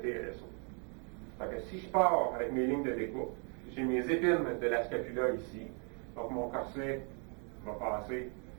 Donc, si je pars avec mes lignes de découpe, j'ai mes épines de la scapula ici. Donc, mon corset va passer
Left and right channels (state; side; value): quieter; left; 38.4 dB